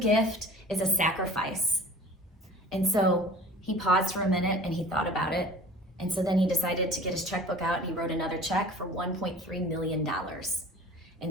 is a sacrifice." And so he paused for a minute and he thought about it. And so then he decided to get his checkbook out and he wrote another check for $1.3 million.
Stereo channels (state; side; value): normal; both; correlation 0.43